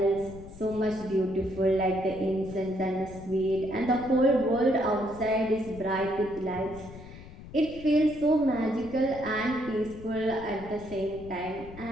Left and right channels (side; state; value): left; noise; rumble, 16 dB below the sound